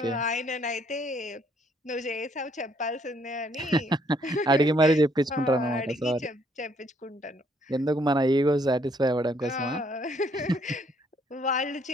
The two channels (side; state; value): both; normal; correlation 0.67